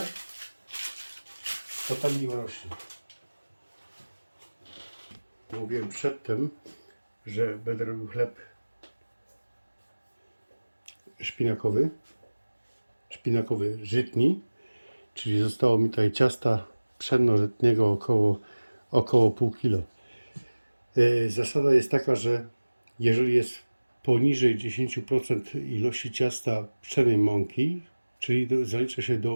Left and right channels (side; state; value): both; inverted; correlation -1.00